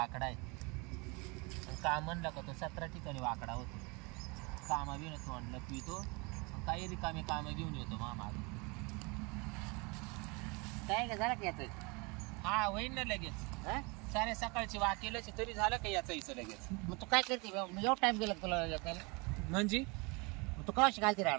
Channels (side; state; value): left; quieter; 28.7 dB